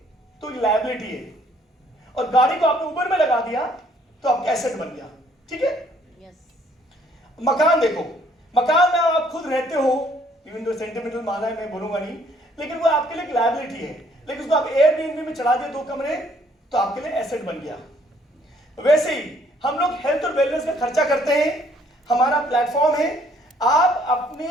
तो लायबिलिटी है, और गाड़ी को आपने ऊबर में लगा दिया तो आपका एसेट बन गया। ठीक है? मकान देखो, मकान में आप खुद रहते हो, इवन दो सेंटिमेंटल माना है, मैं बोलूंगा नहीं, लेकिन वो आपके लिए एक लायबिलिटी है। लेकिन उसको आप एयरबीएनबी में चढ़ा दिए 2 कमरे, तो आपके लिए एसेट बन गया। वैसे ही हम लोग हेल्थ और वेलनेस का खर्चा करते हैं। हमारा प्लेटफॉर्म है, आप अपने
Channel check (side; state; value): both; normal; correlation 0.64